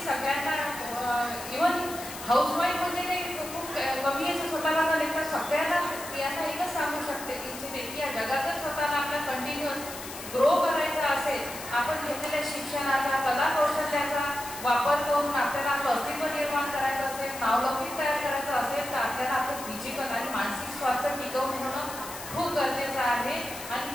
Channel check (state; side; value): noise; left; hiss, 11 dB below the sound